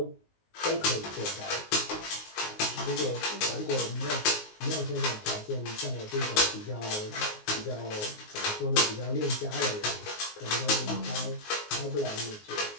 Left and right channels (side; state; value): right; late; 19 ms